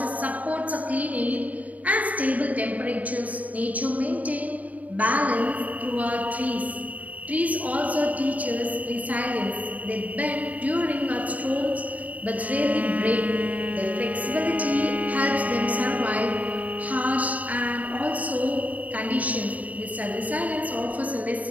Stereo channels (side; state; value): left; late; 0.072 ms